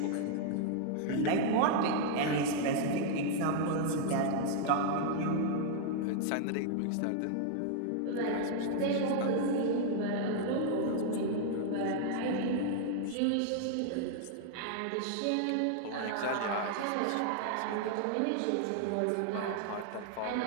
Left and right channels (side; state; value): both; different; correlation 0.00